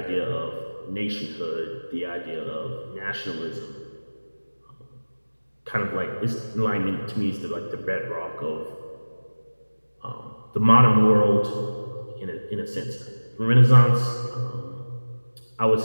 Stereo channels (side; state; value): both; inverted; correlation -1.00